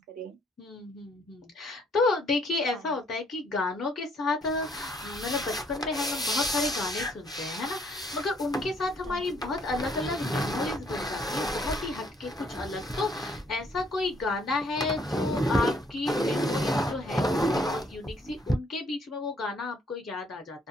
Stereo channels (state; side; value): normal; both; correlation 0.66